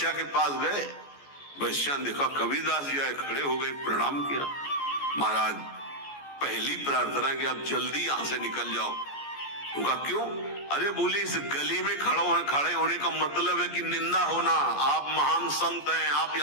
के पास गए, वैश्या ने देखा कबीरदास जी आए, खड़े हो गए, प्रणाम किया। महाराज पहली प्रार्थना कि आप जल्दी यहां से निकल जाओ। उनका क्यों? अरे बोले इस गली में खड़े होने का मतलब है कि निंदा होना। आप महान संत हैं, आप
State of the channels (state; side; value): late; right; 14 ms